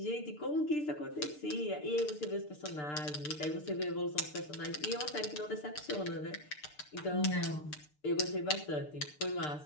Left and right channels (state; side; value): late; right; 6.7 ms